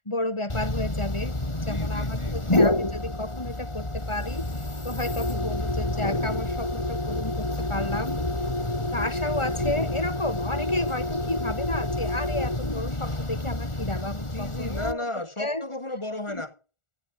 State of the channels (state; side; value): late; right; 1.4 ms